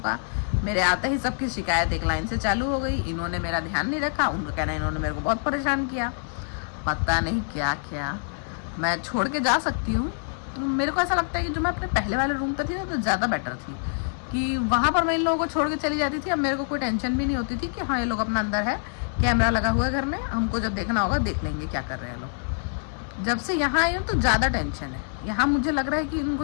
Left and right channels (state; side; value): silent; right; digital silence